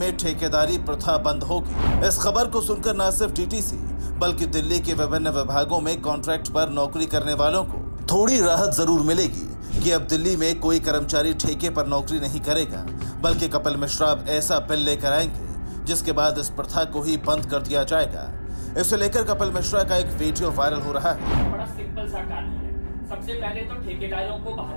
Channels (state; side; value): inverted; both; correlation -1.00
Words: ठेकेदारी प्रथा बंद होगी। इस खबर को सुनकर न सिर्फ टीटीसी बल्कि दिल्ली के विभिन्न विभागों में कॉन्ट्रैक्ट पर नौकरी करने वालों को थोड़ी राहत जरूर मिलेगी कि अब दिल्ली में कोई कर्मचारी ठेके पर नौकरी नहीं करेगा, बल्कि कपिल मिश्रा अब ऐसा बिल लेकर आएंगे जिसके बाद इस प्रथा को ही बंद कर दिया जाएगा। इसे लेकर कपिल मिश्रा का एक वीडियो वायरल हो रहा है। बड़ा सिंपल सा कानून है। सबसे पहले तो ठेकेदारों को बाहर